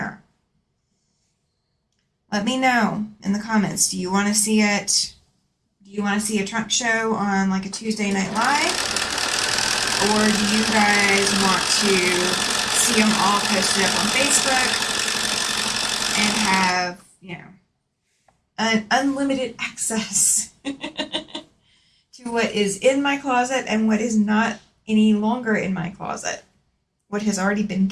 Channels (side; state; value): both; identical; correlation 1.00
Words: Let me know in the comments. Do you want to see it? Do you want to see a trunk show on like a Tuesday Night Live? or do you guys want to see them all posted up on Facebook and have, you know, an unlimited access to what is in my closet and what is not any longer in my closet, what has already been